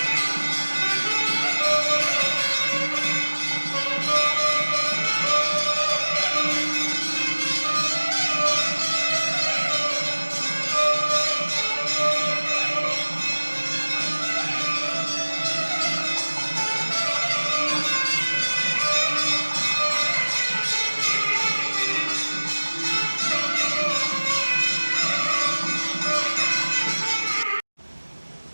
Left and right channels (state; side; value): inverted; both; correlation -1.00